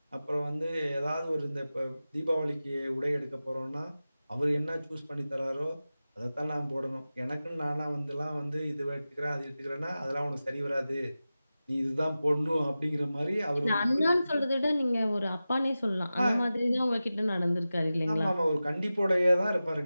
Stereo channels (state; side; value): inverted; both; correlation -0.95